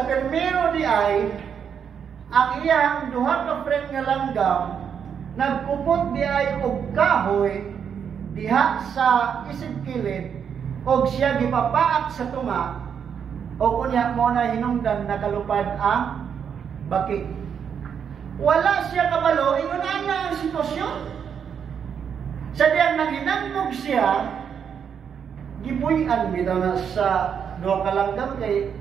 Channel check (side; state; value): left; quieter; 7.5 dB